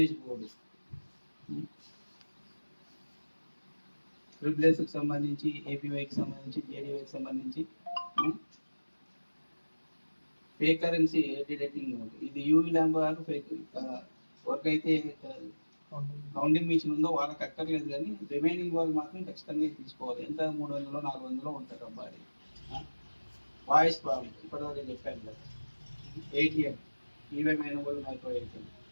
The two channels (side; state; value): both; inverted; correlation -1.00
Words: బోర్డు, రిప్లేస్కి సంబంధించి, ఏపీవైకి సంబంధించి, జేడీవైకి సంబంధించి ఫేక్ కరెన్సీ డిటెక్టింగ్ మోడ్. ఇది యూవీ ల్యాంప్ గారు ఫేక్ వర్క్ అయితే కౌంటింగ్ మిషన్ ఉందో వాళ్ళకి అక్కర్లేదు, కానీ రిమైనింగ్ వాళ్ళు మాత్రం ఖచ్చితంగా తీసుకోవాలి. ఎంత 300 400 ఉంటారు అబ్బాయి. వాయిస్ ప్రాబ్లం ఇప్పటివరకు చెప్పాను కదా. ఏటీఎం ఈవీఎం వాళ్ళు మైక్రో